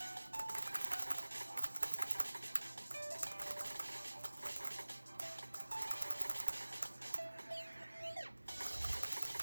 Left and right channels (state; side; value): inverted; both; correlation -1.00